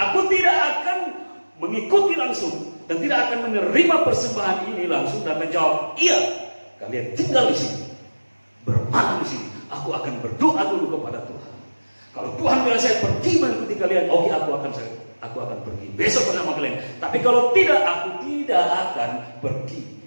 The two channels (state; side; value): inverted; both; correlation -1.00